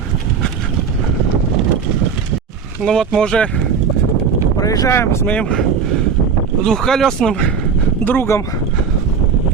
Ну вот мы уже проезжаем с моим двухколесным другом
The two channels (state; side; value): quieter; left; 6.3 dB